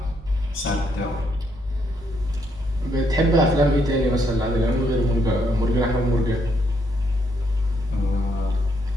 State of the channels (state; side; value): normal; both; correlation 0.74